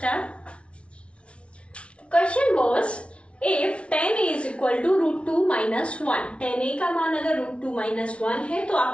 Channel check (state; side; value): late; right; 0.060 ms